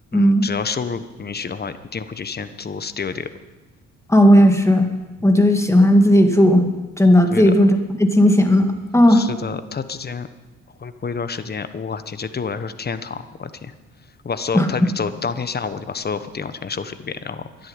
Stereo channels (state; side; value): normal; both; correlation 0.81